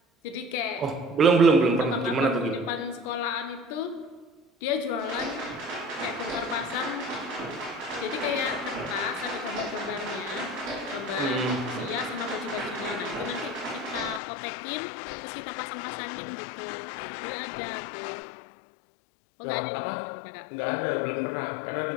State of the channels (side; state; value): right; drops out; at 14.2 s